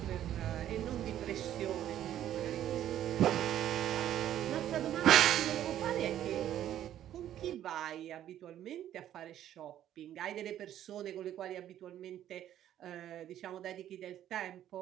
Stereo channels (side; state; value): left; quieter; 11.6 dB